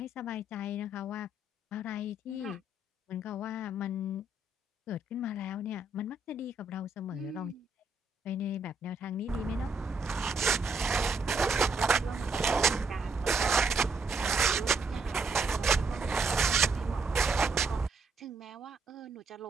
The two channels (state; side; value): quieter; left; 3.1 dB